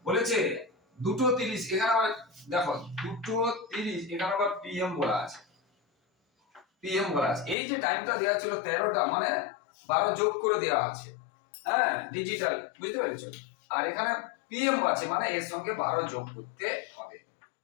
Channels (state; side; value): drops out; right; at 7.6 s